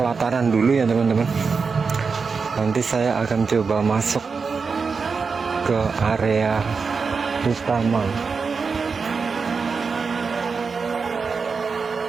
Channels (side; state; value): left; quieter; 5.1 dB